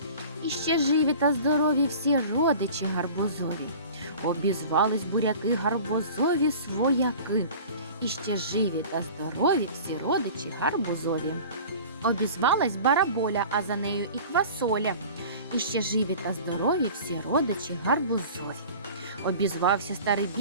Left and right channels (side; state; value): both; inverted; correlation -0.41